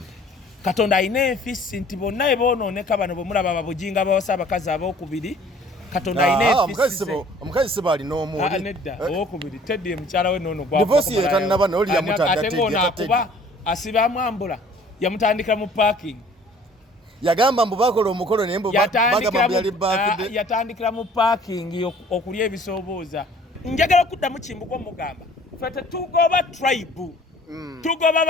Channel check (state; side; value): normal; both; correlation 0.53